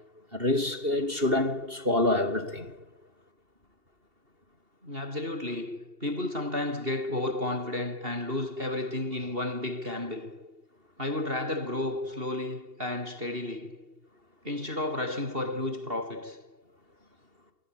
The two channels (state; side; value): late; left; 2.7 ms